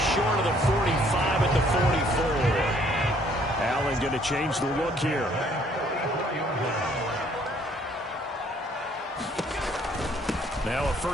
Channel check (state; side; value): normal; both; correlation 0.63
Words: short of the 45 at the 44. Allen going to change the look here. Now a